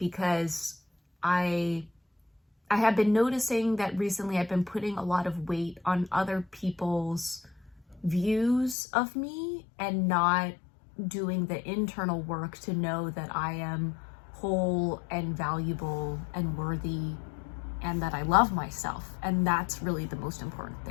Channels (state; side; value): drops out; right; at 8.8 s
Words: I have been noticing that recently I've been putting a lot of weight on other people's views of me and not doing the internal work to know that I am whole and valuable and worthy and that I love myself. And that's really the most important